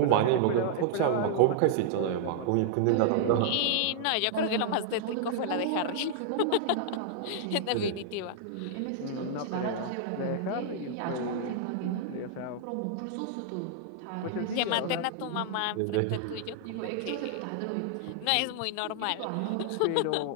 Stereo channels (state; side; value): different; both; correlation -0.01